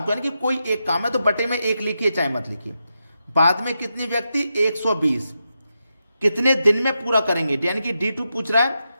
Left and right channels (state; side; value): inverted; both; correlation -0.87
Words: को, यानी कि कोई एक काम है, तो बटे में 1 लिखिए चाहे मत लिखिए। बाद में कितने व्यक्ति, 120, कितने दिन में पूरा करेंगे, यानी कि D2 पूछ रहा है,